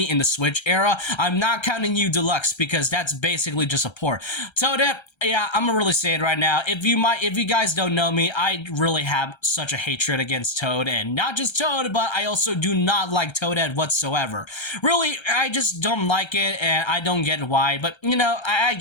in the Switch era. I'm not counting U Deluxe because that's basically just a port. Toadette, yeah, I'm gonna really say it right now. If you guys don't know me, I really have such a hatred against Toad, and not just Toad, but I also do not like Toadette whatsoever. Really, I just don't like it, and I don't get why, but I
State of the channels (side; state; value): right; late; 1.3 ms